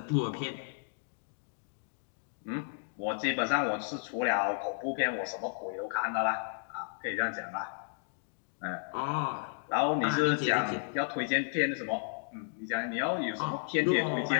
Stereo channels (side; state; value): right; silent; digital silence